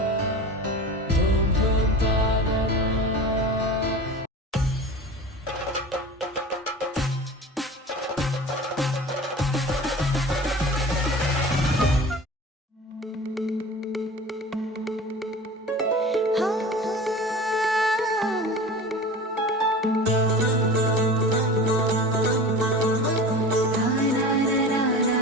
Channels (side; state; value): both; normal; correlation 0.36